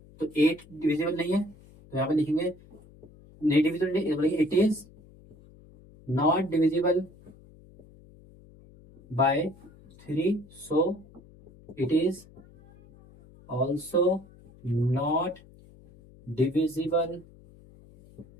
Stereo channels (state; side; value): noise; left; hum, 24 dB below the sound